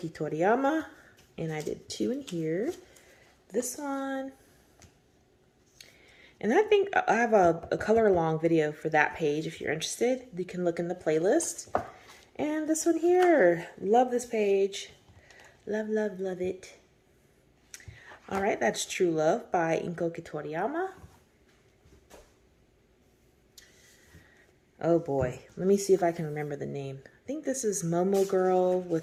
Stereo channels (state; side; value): identical; both; correlation 1.00